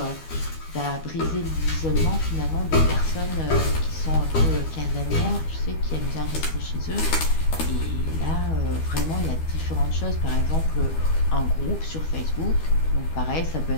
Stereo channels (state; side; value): late; right; 12 ms